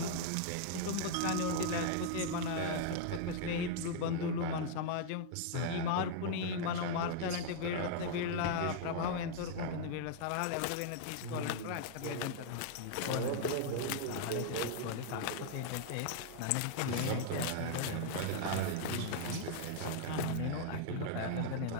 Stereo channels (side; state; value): both; different; correlation -0.01